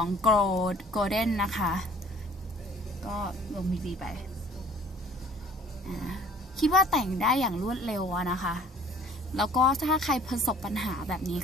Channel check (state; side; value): normal; both; correlation 0.53